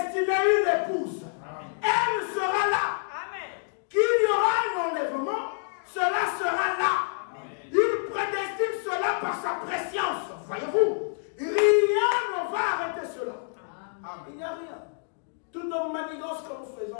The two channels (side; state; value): right; silent; digital silence